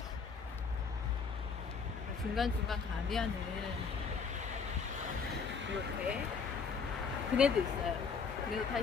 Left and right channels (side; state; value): right; quieter; 5.5 dB